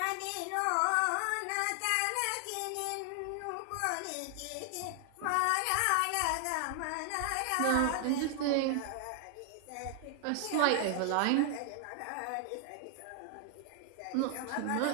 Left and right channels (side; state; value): both; different; correlation 0.00